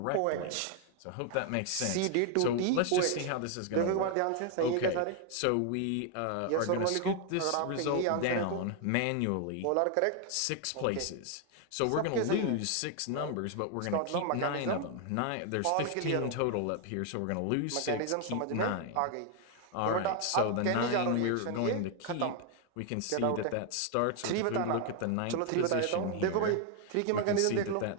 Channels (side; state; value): both; different; correlation 0.00